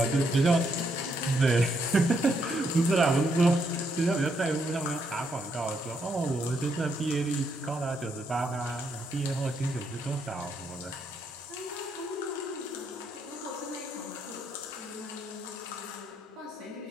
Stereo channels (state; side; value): normal; both; correlation 0.76